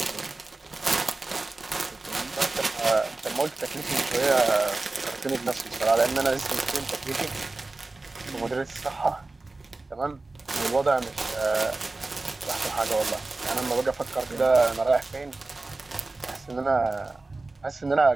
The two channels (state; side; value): quieter; left; 3.3 dB